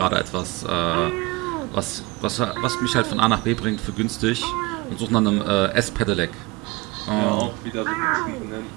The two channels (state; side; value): quieter; left; 22.8 dB